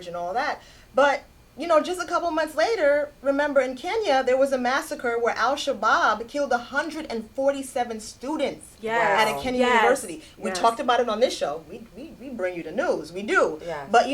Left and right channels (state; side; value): identical; both; correlation 1.00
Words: and all that. But you know, just a couple months later, remember in Kenya, there was a massacre where Al-Shabaab killed 147 students at a Kenya university. We talked about it on this show. We bring you the news. We do. Yes. But,